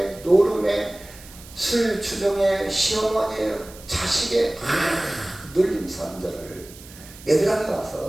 노름에 술 주정에 시어머니에 자식에 눌린 사람들을 얘들한테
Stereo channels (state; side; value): noise; right; hiss, 19 dB below the sound